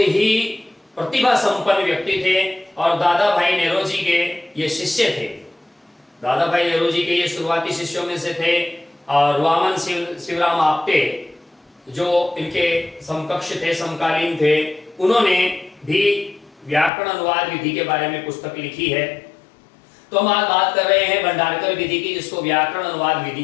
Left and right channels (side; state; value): right; drops out; at 16.9 s